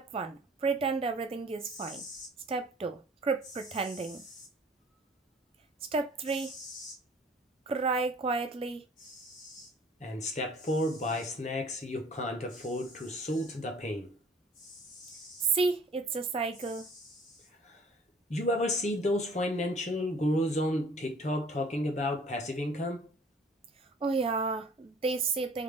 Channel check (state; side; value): normal; both; correlation 0.52